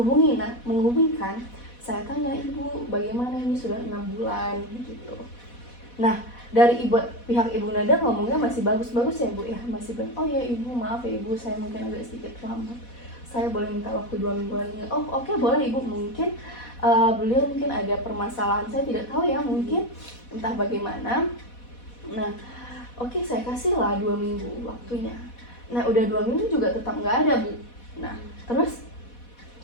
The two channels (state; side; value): late; right; 4.1 ms